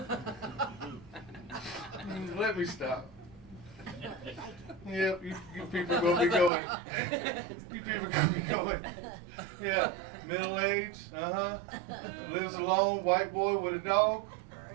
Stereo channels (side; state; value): left; drops out; at 6.5 s